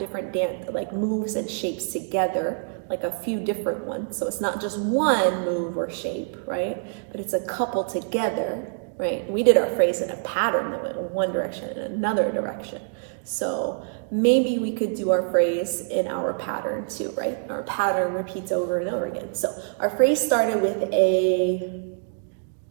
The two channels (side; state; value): left; silent; digital silence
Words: like moves and shapes together, like a few different ones. So it's not just one move or shape, right? But it's a couple together, right? We did our phrase in a pattern that went in one direction and another direction. So maybe we could do our phrase in our pattern too, right? Our pattern repeats over and over again. So our phrase started with a